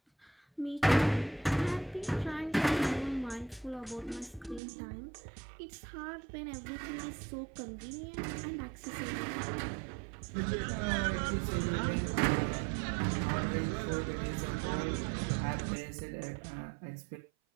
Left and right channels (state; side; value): drops out; left; at 4.6 s